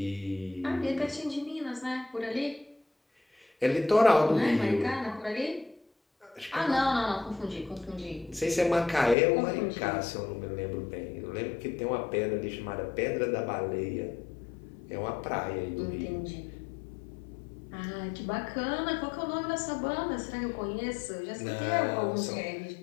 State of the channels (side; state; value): right; drops out; at 9.2 s